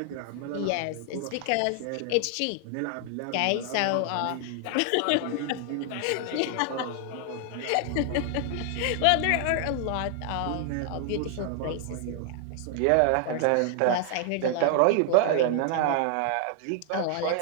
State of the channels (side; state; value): both; different; correlation 0.00